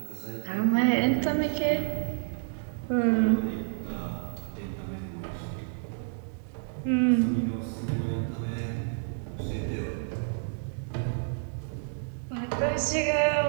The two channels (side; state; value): left; silent; digital silence